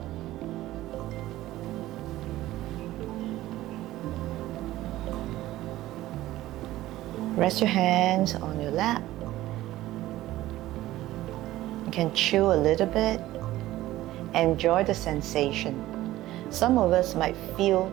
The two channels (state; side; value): quieter; left; 15.7 dB